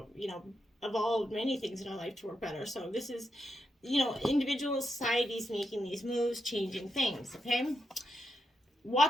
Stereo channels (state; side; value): normal; both; correlation 0.84